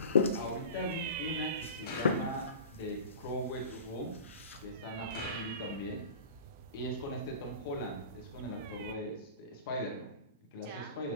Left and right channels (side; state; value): both; inverted; correlation -0.36